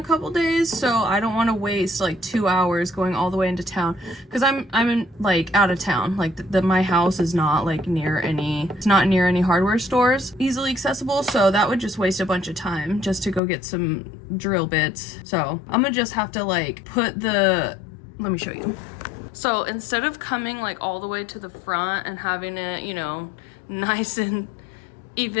couple days, so I don't want to waste like 2 hours going all the way into town, because I'm in like out of town. Like my house is not like near any, it's not near any hardware stores easily accessible, so that would just waste a bunch of time just to go get some drill bits. So I'm gonna just have to like put the, let me show you. So instead of coming like all the way to the front and having it, you know, nice and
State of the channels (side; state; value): right; drops out; at 13.4 s